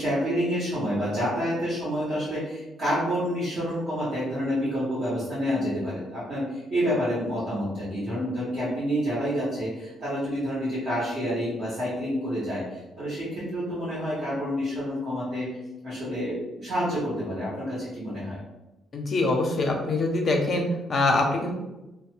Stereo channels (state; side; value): normal; both; correlation 0.73